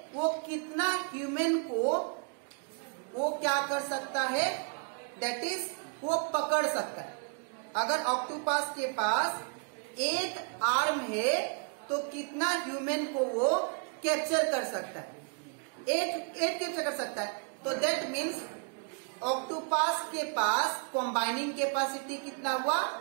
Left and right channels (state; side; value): quieter; left; 37.7 dB